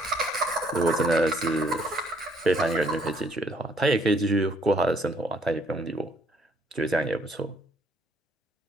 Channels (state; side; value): normal; both; correlation 0.65